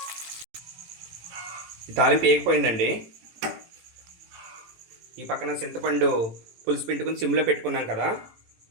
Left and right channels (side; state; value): left; late; 18 ms